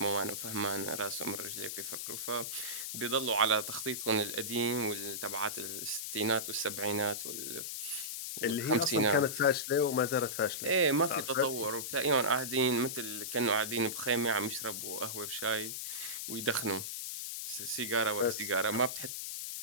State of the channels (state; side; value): noise; left; hiss, 5 dB below the sound